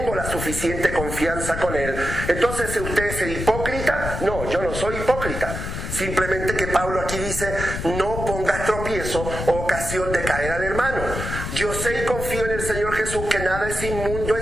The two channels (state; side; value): noise; left; rumble, 6 dB below the sound